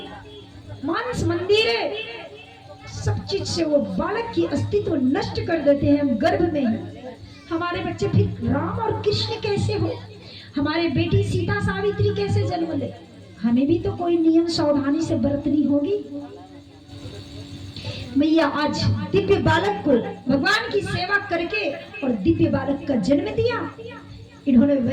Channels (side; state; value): both; identical; correlation 1.00